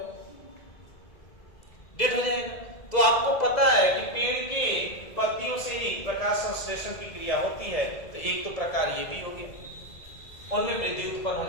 डेड हो जाएगा। तो आपको पता है कि पेड़ के पत्तियों से ही प्रकाश संश्लेषण की क्रिया होती है। तो एक तो प्रकार ये भी होगी, उनमें वृद्धि उत्पन्न हो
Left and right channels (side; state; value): right; late; 2.0 ms